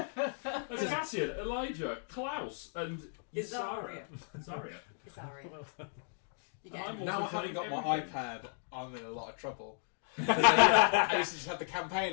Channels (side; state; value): right; silent; digital silence